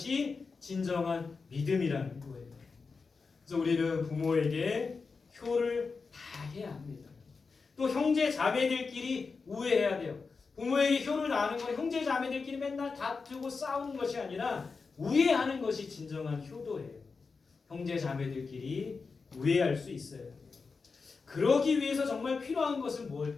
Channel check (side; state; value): right; quieter; 4.7 dB